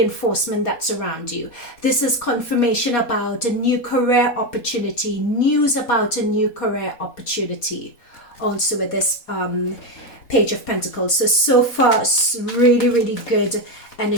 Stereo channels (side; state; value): right; late; 4.2 ms